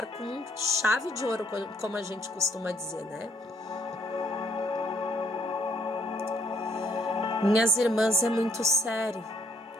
com chave de ouro, como a gente costuma dizer, né? Minhas irmãs, é muito sério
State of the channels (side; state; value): both; normal; correlation 0.67